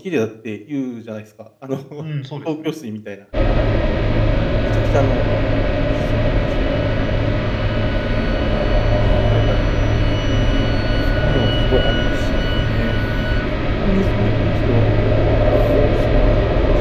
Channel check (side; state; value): both; identical; correlation 1.00